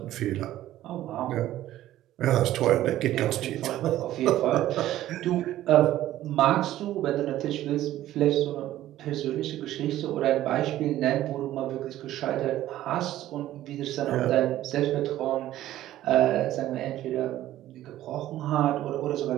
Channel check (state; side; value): quieter; left; 13.9 dB